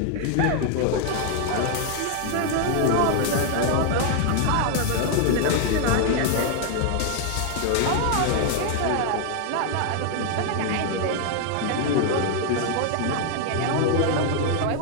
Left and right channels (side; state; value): both; different; correlation 0.00